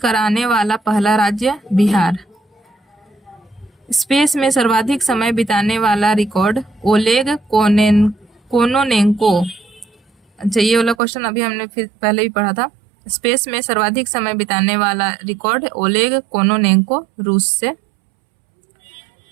वाला पहला राज्य बिहार। स्पेस में सर्वाधिक समय बिताने वाला रिकॉर्ड ओलेग कोनोनेंको। अच्छा, ये वाला क्वेश्चन अभी हमने फिर पहले भी पढ़ा था। स्पेस में सर्वाधिक समय बिताने वाला रिकॉर्ड ओलेग कोनोनेंको, रूस से।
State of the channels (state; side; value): drops out; left; at 11.0 s